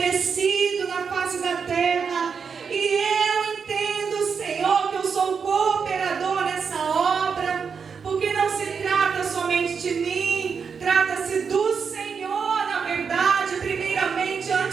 na face da terra. E eu entendo, Senhor, que eu sou cooperador nessa obra, porque não se trata somente de mim, trata-se do Senhor, na verdade, primeiramente,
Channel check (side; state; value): left; quieter; 6.0 dB